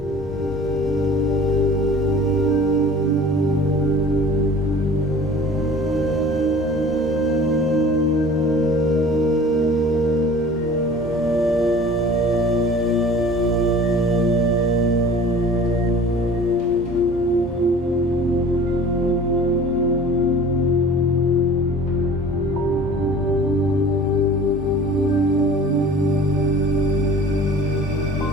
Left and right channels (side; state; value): both; normal; correlation 0.44